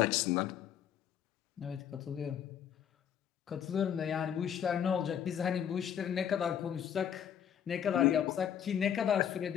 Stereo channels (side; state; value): right; quieter; 9.0 dB